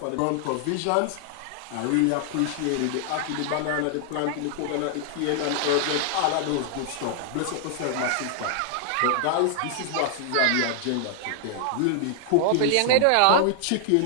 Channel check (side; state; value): both; different; correlation 0.00